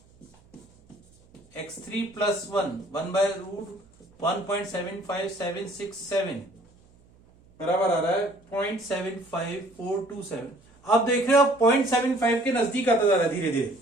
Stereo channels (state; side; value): noise; right; hum, 30 dB below the sound